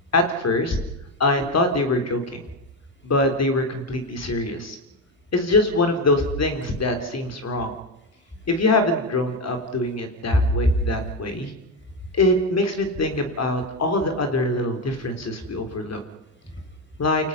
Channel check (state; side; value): normal; both; correlation 0.13